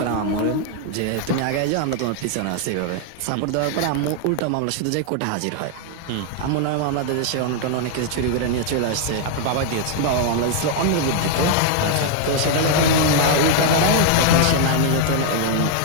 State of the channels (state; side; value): different; both; correlation 0.00